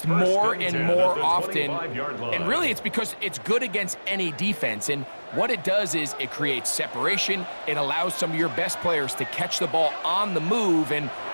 more and more often. And really, it's because it's good against any defense. And what it does is it creates separation. It allows some of your best players to catch the ball on the move. And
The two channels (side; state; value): both; inverted; correlation -1.00